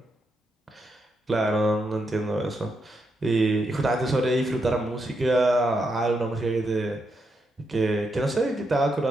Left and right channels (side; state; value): both; normal; correlation 0.82